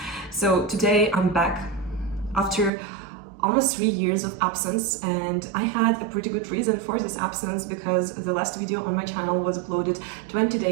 So today I'm back after almost 3 years of absence, and I had a pretty good reason for this absence because the last video on my channel was uploaded 20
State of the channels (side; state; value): left; drops out; at 2.7 s